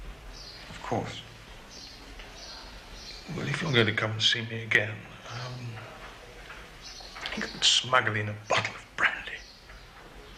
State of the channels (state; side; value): identical; both; correlation 1.00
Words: Of course. Well, if you're going to come and see me again, you could smuggle in a bottle of brandy.